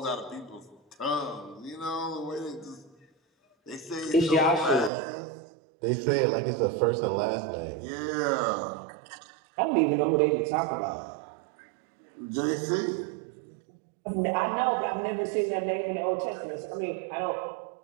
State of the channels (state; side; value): drops out; left; at 4.9 s